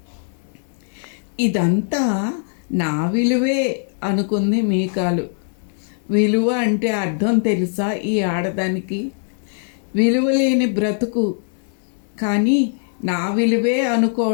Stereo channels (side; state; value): right; silent; 65 dB below the other